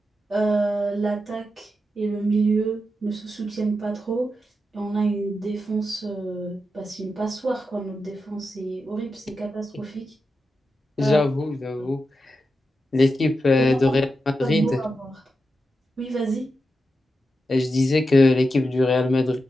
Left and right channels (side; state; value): both; normal; correlation 0.88